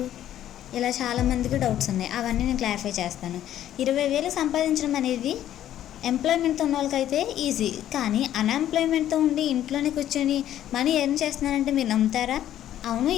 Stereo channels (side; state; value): right; quieter; 11.8 dB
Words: ఇలా చాలామందికి డౌట్స్ ఉన్నాయి. అవన్నీ నేను క్లారిఫై చేస్తాను. 20,000 సంపాదించడం అనేది ఎంప్లాయ్మెంట్తో ఉన్న వాళ్ళకైతే ఈజీ, కానీ అన్ఎంప్లాయ్మెంట్తో ఉండి ఇంట్లోనే కూర్చొని మనీ ఎర్న్ చేస్తున్నారంటే మీరు నమ్ముతారా? అవును,